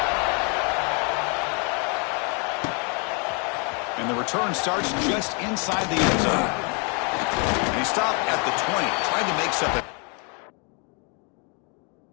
And the return starts just inside the end zone. And he stopped at the 20, trying to make something.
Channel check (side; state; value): right; quieter; 35.7 dB